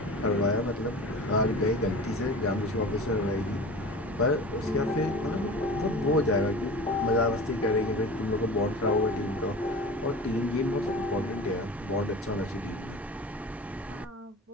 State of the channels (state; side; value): normal; both; correlation 0.36